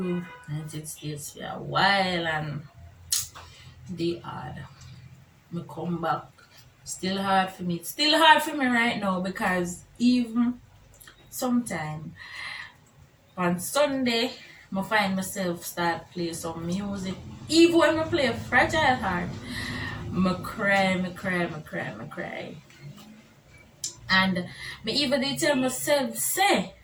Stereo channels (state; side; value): identical; both; correlation 1.00